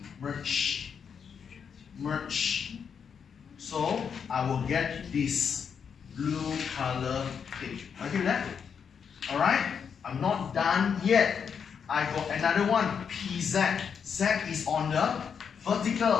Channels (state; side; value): quieter; right; 6.9 dB